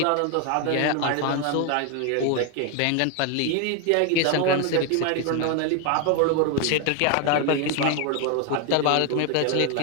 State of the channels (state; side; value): different; both; correlation 0.01